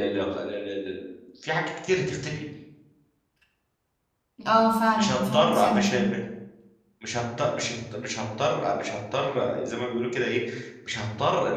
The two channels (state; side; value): identical; both; correlation 1.00